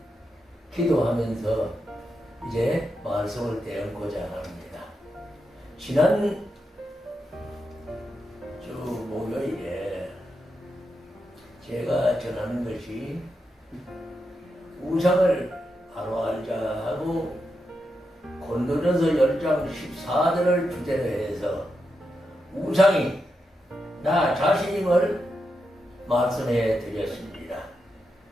기도하면서 이제 말씀을 대언고자 합니다. 지난 주 목요일에 제가 전하는 것이 우상을 바로 알자 하고 고린도전서 10장 14절을 주제로 해서 우상이 나 자신임을 말씀해 드렸습니다.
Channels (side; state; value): both; normal; correlation 0.86